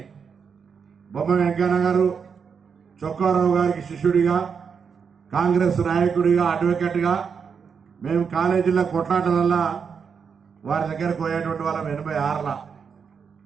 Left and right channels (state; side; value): quieter; left; 6.3 dB